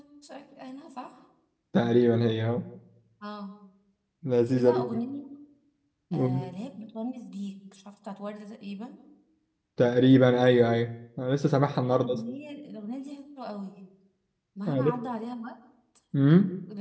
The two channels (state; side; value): identical; both; correlation 1.00